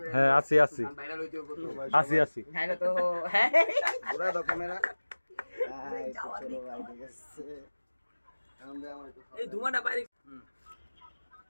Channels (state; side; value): inverted; both; correlation -1.00